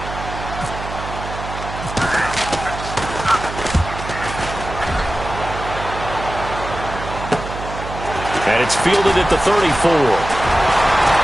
And it's fielded at the 34.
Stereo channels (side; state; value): right; noise; hum, 9 dB below the sound